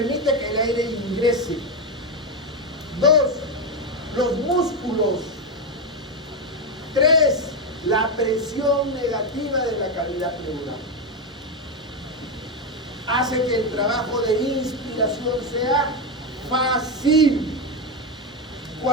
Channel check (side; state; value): both; normal; correlation 0.09